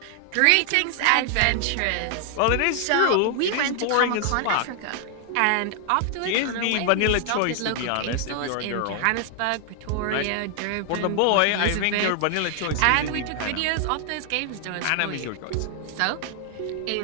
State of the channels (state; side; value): different; both; correlation 0.00